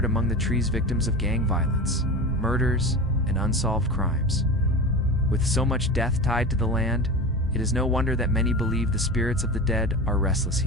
among the trees, victims of gang violence, murders, and unsolved crimes. With so much death tied to the land, it is no wonder that many believe the spirits of the dead are restless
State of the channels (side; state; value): both; normal; correlation 0.28